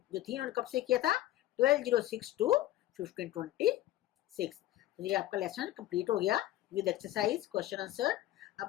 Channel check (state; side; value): quieter; right; 14.9 dB